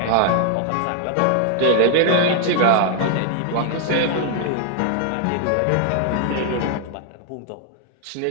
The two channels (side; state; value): both; different; correlation 0.00